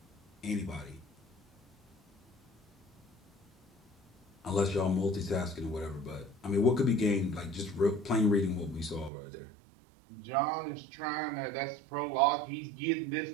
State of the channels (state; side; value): drops out; left; at 9.1 s